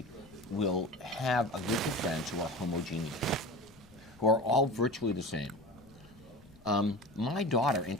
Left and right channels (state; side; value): noise; left; rumble, 25 dB below the sound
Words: will have a group of friends who are homogeneous, who are all virtually the same. My daughter,